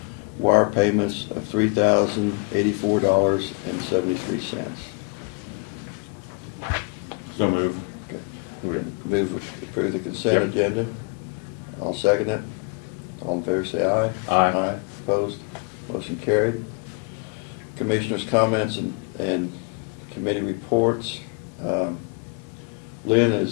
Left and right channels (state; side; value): quieter; right; 33.3 dB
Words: Wire payments of $3,084.73. So moved. Okay. Move to approve the consent agenda. I'll second it. All in favor say aye. Aye. Aye. Opposed? Motion carried. Commissioners' comments and committee reports. Lynn